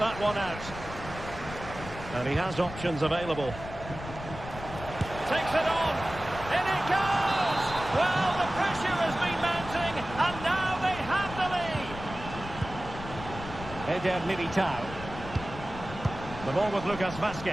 one out. And he has options available. Takes it on, in it goes! Well, the pressure has been mounting, and now they have the lead. Eder Militao. The ball with Lucas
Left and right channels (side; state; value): left; noise; rumble, 11 dB below the sound